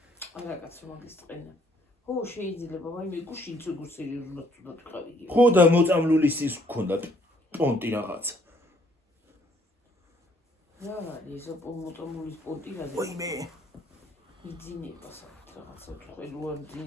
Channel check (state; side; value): normal; both; correlation 0.65